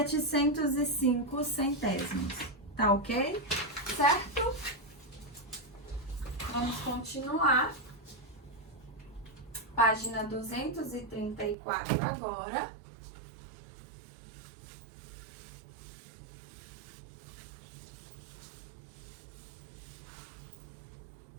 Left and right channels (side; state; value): left; drops out; at 11.6 s